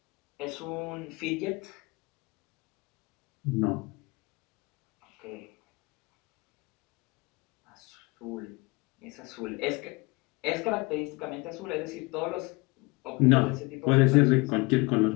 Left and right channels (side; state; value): right; quieter; 25.6 dB